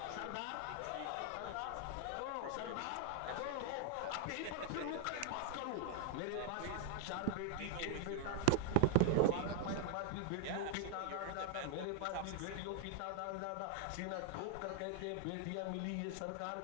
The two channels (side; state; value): both; different; correlation 0.00